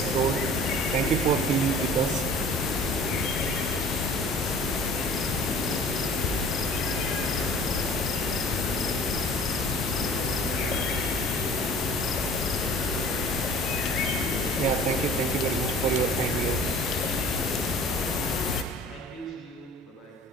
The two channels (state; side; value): normal; both; correlation 0.46